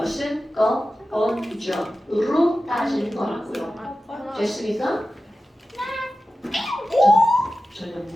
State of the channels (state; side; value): normal; both; correlation 0.94